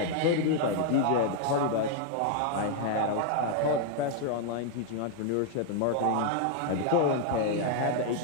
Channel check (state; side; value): different; both; correlation 0.00